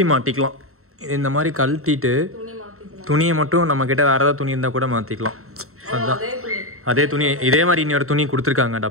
மாட்டிக்கலாம். இது இந்த மாதிரி கழட்டிட்டு துணியை மட்டும் நம்ம கிட்ட வேற ஏதாவது துணி இருந்தால் கூட மாற்றிக்கலாம். அதுதான் அதே துணி. இதே மாதிரி இன்னொரு துணி கொடுத்துருக்காங்க,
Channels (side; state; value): left; late; 0.63 ms